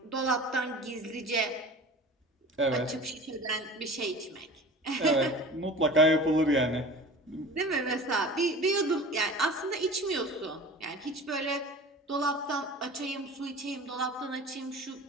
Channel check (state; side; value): normal; both; correlation 0.39